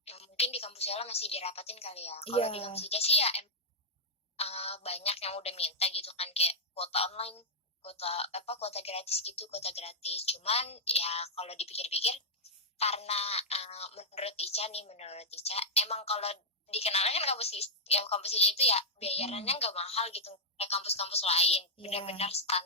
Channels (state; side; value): normal; both; correlation -0.08